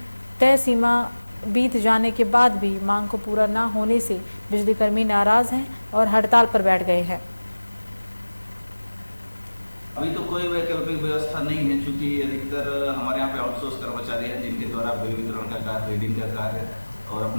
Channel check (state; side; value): inverted; both; correlation -1.00